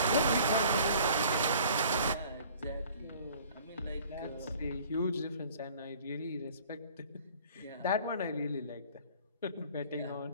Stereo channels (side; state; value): both; inverted; correlation -0.51